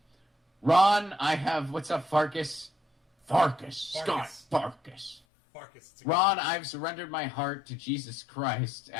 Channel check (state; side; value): drops out; right; at 5.2 s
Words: Ron, I have... What's up, Farkas? Scott Farkas. Ron, I've surrendered my heart to Jesus Christ